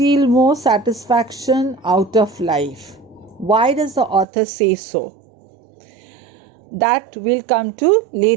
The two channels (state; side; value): drops out; left; at 4.2 s